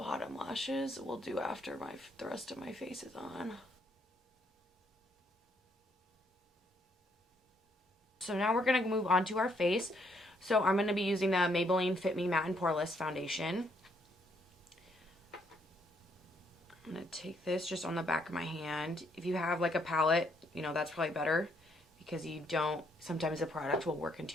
lashes we'll do after the rest of my face is on. So now we're going to move on to our face. So I'm going to be using the Maybelline Fit Me Matte and Poreless Foundation. I'm going to take this just on the back of my hand. If you have like a palette, you know, that's probably better because you don't, sometimes the product will work into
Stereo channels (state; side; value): normal; both; correlation 0.71